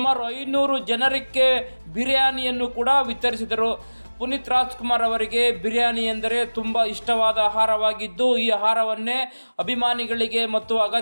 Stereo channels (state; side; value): inverted; both; correlation -1.00